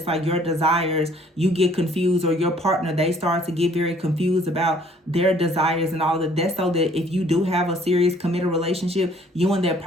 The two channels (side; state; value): both; normal; correlation 0.59